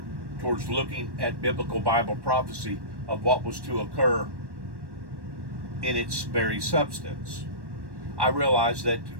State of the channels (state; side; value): late; left; 1.1 ms